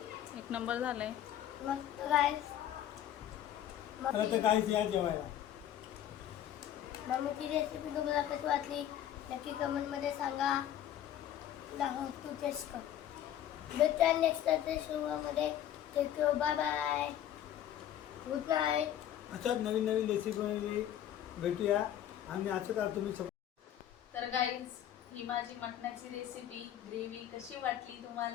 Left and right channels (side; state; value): right; quieter; 11.1 dB